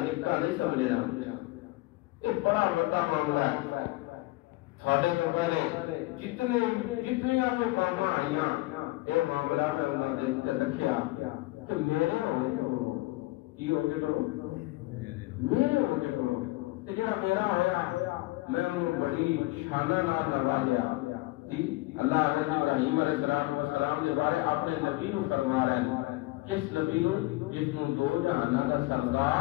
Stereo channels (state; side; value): quieter; right; 20.8 dB